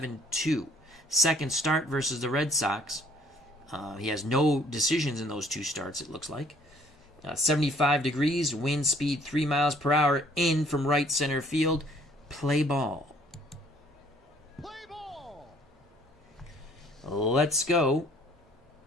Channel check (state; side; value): normal; both; correlation 0.59